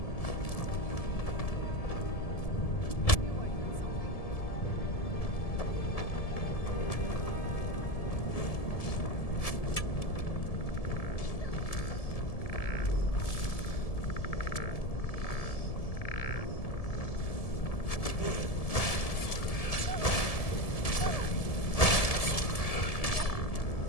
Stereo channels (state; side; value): late; right; 1.7 ms